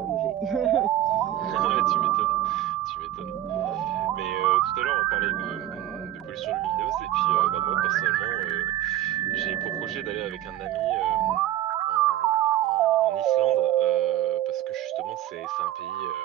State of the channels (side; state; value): left; quieter; 13.2 dB